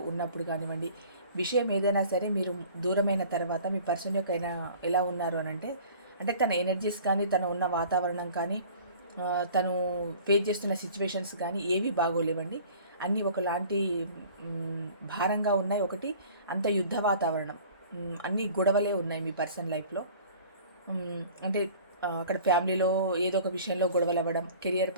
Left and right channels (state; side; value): inverted; both; correlation -0.47